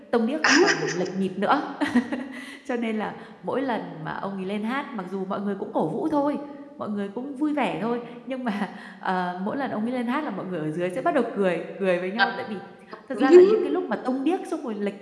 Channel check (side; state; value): both; identical; correlation 1.00